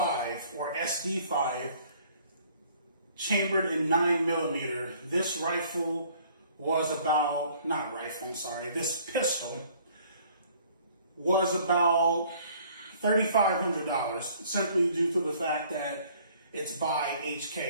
or SD5 chambered in 9mm. This rifle was about, this pistol was about $3,500, simply due to the fact that it's by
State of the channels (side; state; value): both; inverted; correlation -0.57